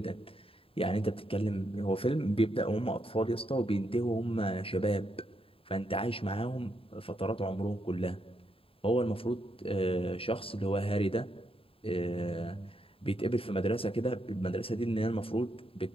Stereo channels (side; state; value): right; late; 0.27 ms